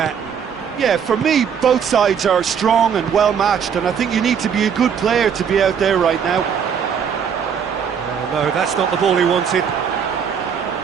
Yeah, for me, both sides are strong and well matched, and I think you need to be a good player to be out there right now. Oh, no, that's not the ball he wanted.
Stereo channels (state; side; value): quieter; left; 7.4 dB